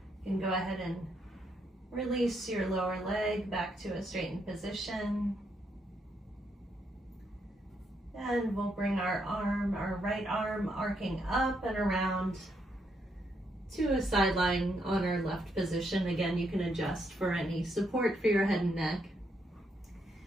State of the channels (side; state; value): both; normal; correlation 0.77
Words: you can go ahead and release your lower leg back to a straightened position. And we'll bring our right arm arcing up and around to a side lying on our left position. Again, you can adjust for any support for your head and neck.